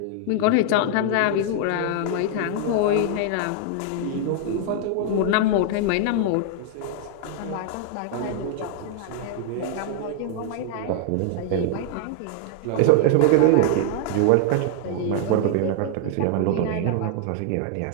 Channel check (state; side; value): different; both; correlation 0.00